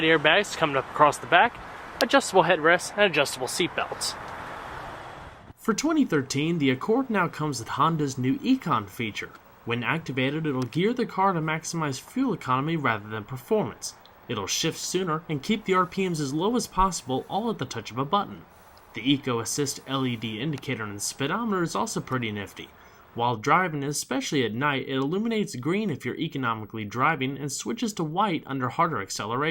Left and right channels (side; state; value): both; identical; correlation 1.00